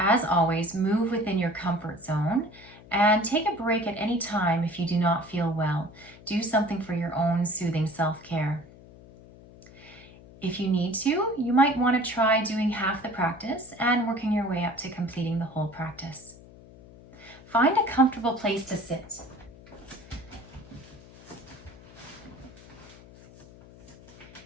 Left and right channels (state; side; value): noise; left; hum, 21 dB below the sound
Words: always, move within your comfort zone and take a break at any time if you do not feel well. Do something for your own soothing self-care. If you need to, you might want to try doing half the practice and working your way up to completing the whole practice. Find a comfortable place to sit.